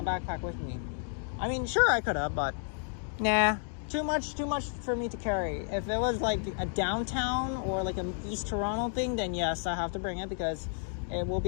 backpack with me. I mean, sure, I could have, but nah, too much for me to carry. If it was like a downtown or like an East Toronto thing, then yes, I have to bring it, because it will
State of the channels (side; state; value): right; silent; 57 dB below the other